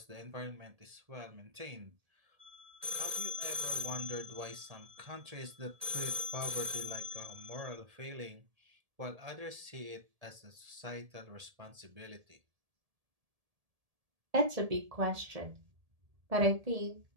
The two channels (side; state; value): left; late; 1.7 ms